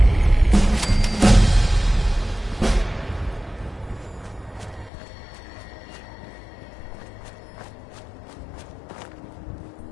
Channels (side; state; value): right; drops out; at 4.9 s